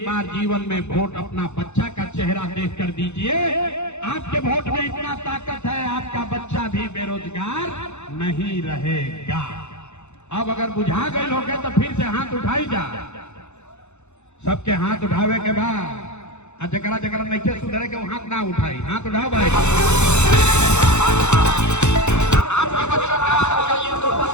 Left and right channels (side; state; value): right; late; 0.82 ms